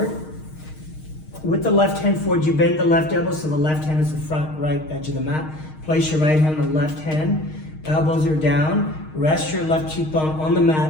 With the left hand forward, you bend the left elbow so the left hand is the front right edge of the mat. Place your right hand on the left hand. Elbows are down. Rest your left cheekbone on the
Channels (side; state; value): right; late; 6.4 ms